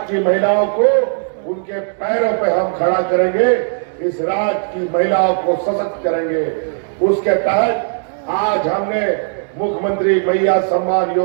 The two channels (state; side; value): silent; left; digital silence